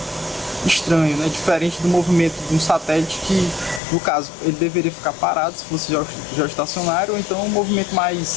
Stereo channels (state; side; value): drops out; right; at 3.8 s